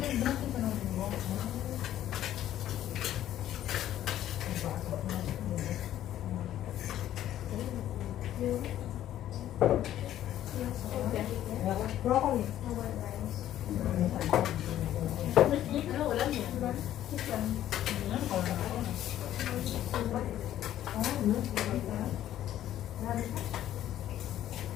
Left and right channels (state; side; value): quieter; right; 12.2 dB